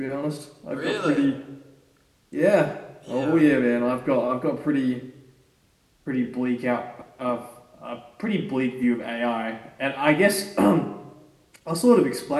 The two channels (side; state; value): both; identical; correlation 1.00